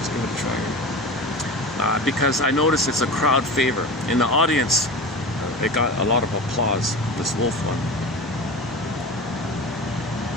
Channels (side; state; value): both; normal; correlation 0.31